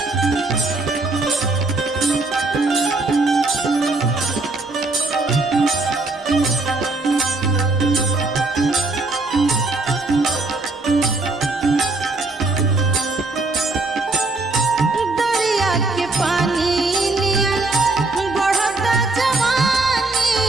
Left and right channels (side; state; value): left; quieter; 3.3 dB